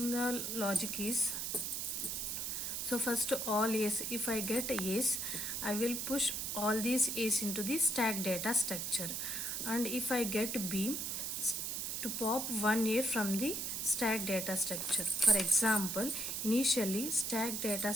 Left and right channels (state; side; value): noise; right; hiss, 2 dB below the sound